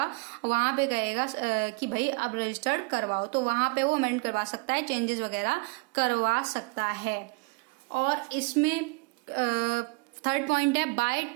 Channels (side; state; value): left; quieter; 28.5 dB